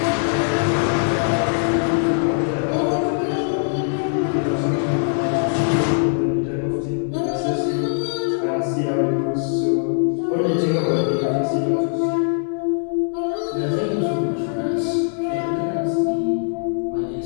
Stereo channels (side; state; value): right; silent; digital silence